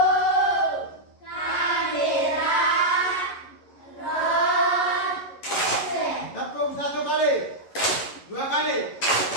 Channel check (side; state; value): right; late; 11 ms